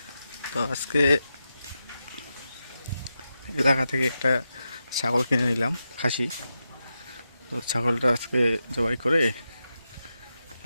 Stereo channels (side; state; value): both; inverted; correlation -0.89